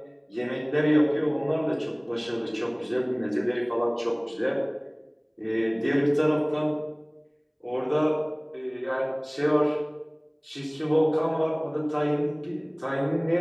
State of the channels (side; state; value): both; identical; correlation 1.00